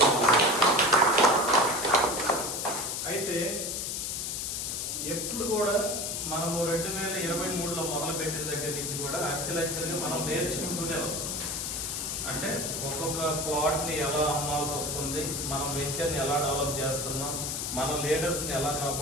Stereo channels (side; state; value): left; noise; hiss, 2 dB below the sound